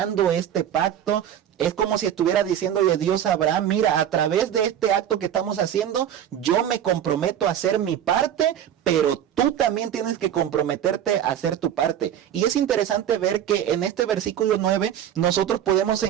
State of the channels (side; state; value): left; quieter; 10.2 dB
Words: este pacto. Es como si estuviera diciéndole Dios a Abraham, mira, a través de este acto que estamos haciendo, yo me comprometo a hacer mi parte, pero tú también tienes que comprometerte a hacer tu parte. Y es interesante ver que en este versículo 9 nosotros podemos